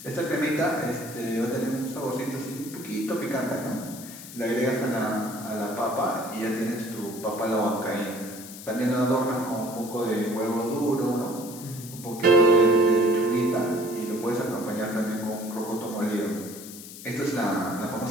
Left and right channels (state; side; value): noise; left; hiss, 14 dB below the sound